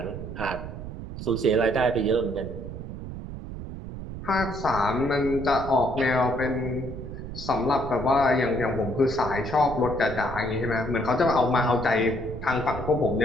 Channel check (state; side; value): noise; right; rumble, 9 dB below the sound